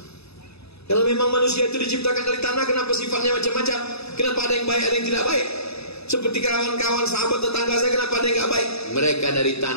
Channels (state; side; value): late; right; 0.79 ms